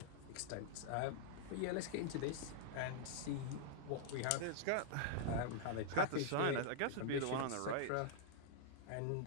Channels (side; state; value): both; different; correlation -0.01